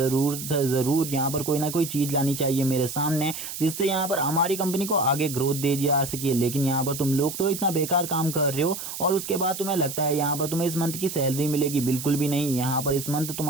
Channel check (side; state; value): right; noise; hiss, 8 dB below the sound